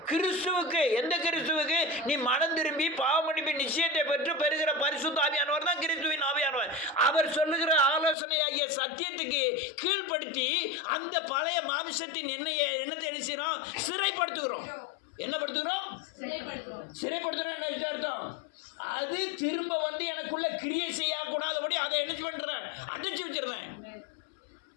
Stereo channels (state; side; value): drops out; right; at 8.2 s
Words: கிறிஸ்துவுக்கு. எந்த கிறிஸ்துவுக்கு? நீ மனம் திரும்பி பாவமன்னிப்பு நிச்சயத்தை பெற்று பெறுகிற பரிசுத்த ஆவியானவர் தான் கிறிஸ்துவின் ஆவியானவர். அவர் சொல்லுகிற ஆலோசனையாகிய சத்தியத்துக்கு கீழ்ப்படுத்தி அந்த பழைய மாமிசத்தின் எண்ணத்தை என்ன செய்யறோம்? சிறைப்படுத்துகிறோம். என்ன படுத்துகிறோம்? சிறைப்படுத்துகிறோம். என்ன அர்த்தம்? அது திரும்ப வந்து எனக்குள்ள கிரியை செய்யக்கூடாதபடி அதை என்ன பண்ணுறேன்? அடைச்சி வச்சிருந்தேன்.